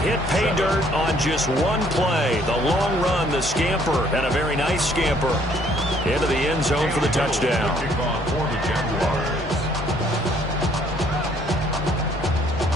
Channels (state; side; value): normal; both; correlation 0.63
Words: pay dirt on just one play. The long run, the scamper, and a very nice scamper into the end zone for the touchdown.